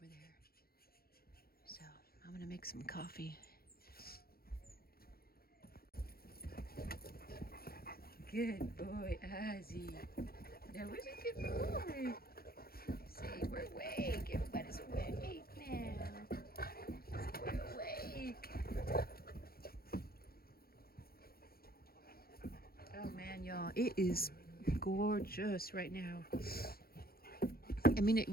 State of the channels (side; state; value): right; late; 0.44 ms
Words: there. So I'm gonna make some coffee. Good boy, Ozzy. That was a good boy. Say, we're awake. Everybody's awake now. We're awake. Oh man, y'all, it is gorgeous right now. I mean, it